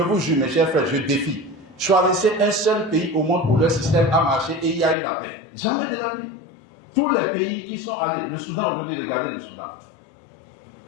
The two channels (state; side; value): drops out; right; at 5.0 s